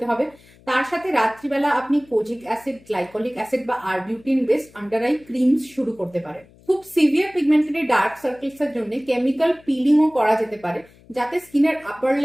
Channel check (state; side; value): noise; left; hum, 27 dB below the sound